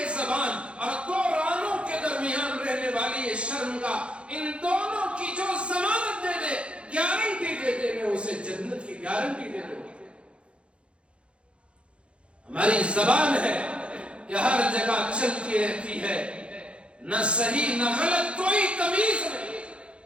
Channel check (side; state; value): left; late; 0.059 ms